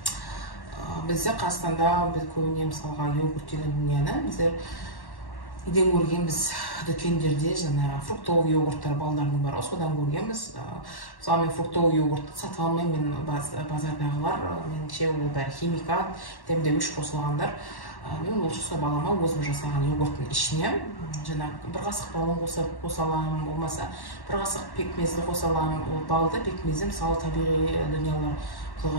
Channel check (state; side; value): late; right; 1.1 ms